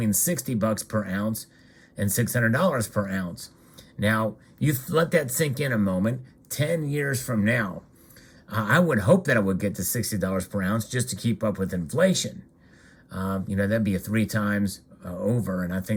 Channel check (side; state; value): both; identical; correlation 1.00